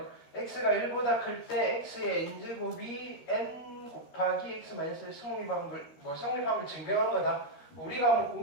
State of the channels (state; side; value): late; right; 13 ms